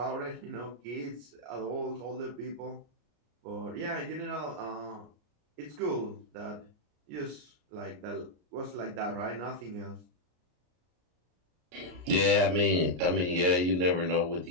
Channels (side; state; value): left; late; 33 ms